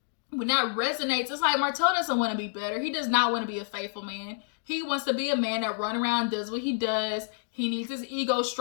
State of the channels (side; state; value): right; silent; digital silence